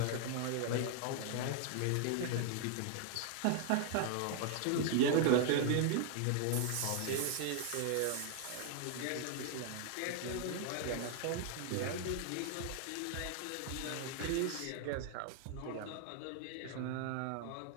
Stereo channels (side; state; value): both; different; correlation 0.00